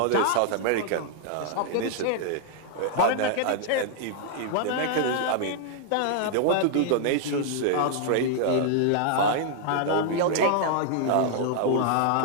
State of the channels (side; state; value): both; different; correlation -0.01